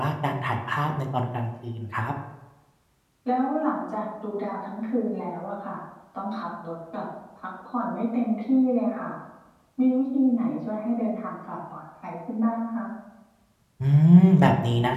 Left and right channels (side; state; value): both; identical; correlation 1.00